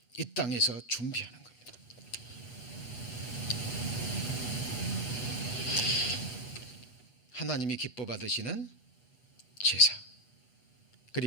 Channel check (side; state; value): right; late; 8.2 ms